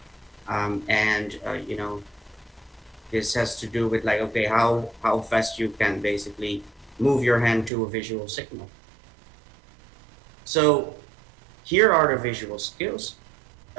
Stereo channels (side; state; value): left; drops out; at 7.7 s